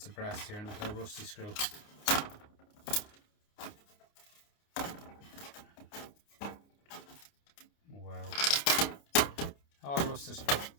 of brass here and a little rusty screw. Wow. All rusted.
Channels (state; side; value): late; right; 29 ms